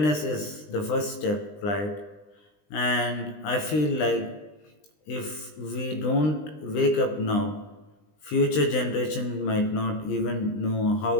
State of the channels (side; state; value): right; late; 20 ms